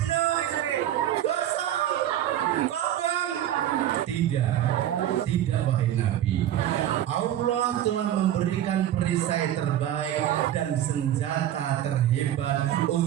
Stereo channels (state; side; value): quieter; left; 11.8 dB